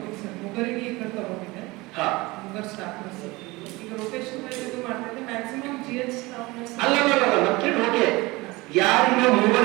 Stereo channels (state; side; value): quieter; left; 22.3 dB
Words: ಸರ್, ಮುಗರಿಗೆ ಈ ಕಡೆ ತಗೊಂಡಿದ್ದೆ. ಹಾ, ಮುಗರ್ ಸ್ಟಾಫ್ ನರ್ಸ್ ಈಗ ರೊಟೇಷನ್ ವೈಸ್ ಇದು ಮಾಡ್ತಿದ್ದೆ. ಮ್ಯಾಕ್ಸಿಮಮ್ GH ಸ್ಟಾಫ್ ನರ್ಸ್ ಅಲ್ಲ ನಮ್ಗೆ ಓಕೆ. ಯಾರಿಗೆ